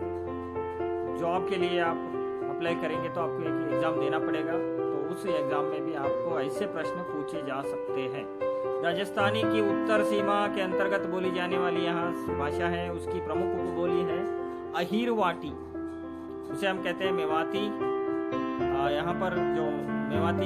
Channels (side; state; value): both; identical; correlation 1.00